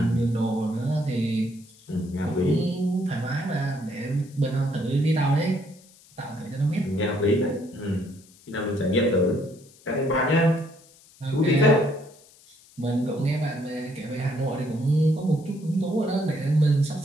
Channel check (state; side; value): noise; left; hiss, 26 dB below the sound